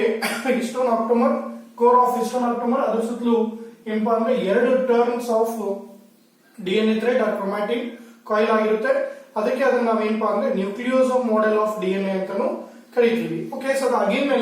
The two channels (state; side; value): identical; both; correlation 1.00